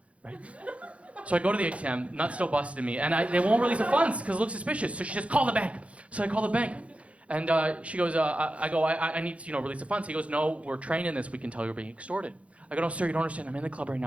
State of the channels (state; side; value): late; left; 0.063 ms